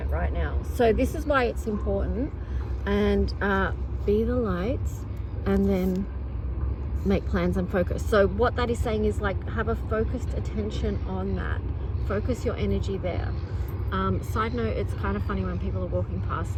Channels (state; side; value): identical; both; correlation 1.00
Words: right now. So this is why it's important. And be the light, and then make plans and focus. So what that is saying is, like, have a focused attention on that. Focus your energy there. Side note, it's kind of funny when people are walking past